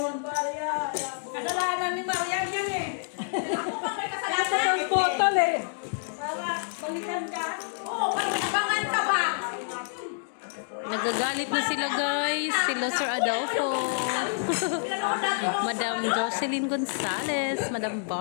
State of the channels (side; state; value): right; silent; digital silence